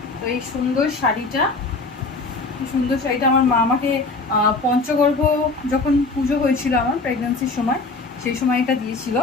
তো এই সুন্দর শাড়িটা আমার মা আমাকে পঞ্চগর্ভ যখন পুজো হয়েছিল আমার প্রেগন্যান্সির সময়, সেই সময় এটা দিয়েছিল।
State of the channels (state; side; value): quieter; right; 3.6 dB